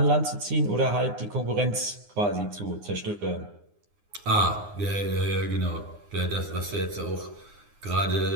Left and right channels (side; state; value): left; late; 9.7 ms